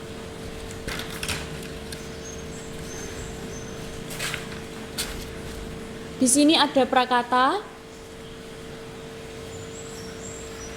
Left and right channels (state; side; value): identical; both; correlation 1.00